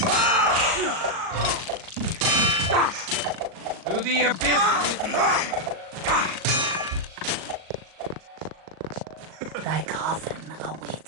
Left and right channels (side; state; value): left; late; 38 ms